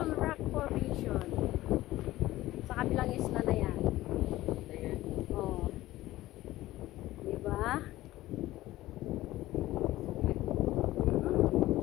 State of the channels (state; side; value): quieter; right; 16.3 dB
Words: rock formation. Sa kabilang isla na yan. Oh. Diba?